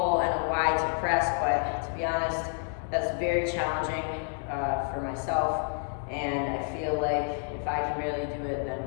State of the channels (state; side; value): silent; right; 58 dB below the other